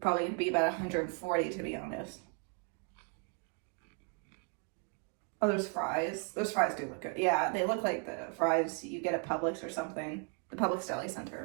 going to be about 140, to be honest. Oh, there's fries. Those fries do look good. Yeah, they look like the fries you get at Publix or something. The Publix Deli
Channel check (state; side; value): quieter; left; 36.2 dB